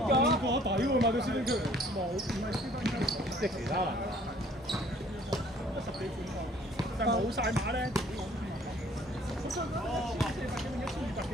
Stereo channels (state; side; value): normal; both; correlation 0.57